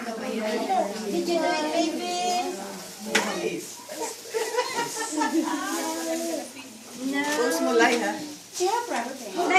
daw ba yun? Did you do it, baby? No. Post mo live, ha? Siyempre. Na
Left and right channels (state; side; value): identical; both; correlation 1.00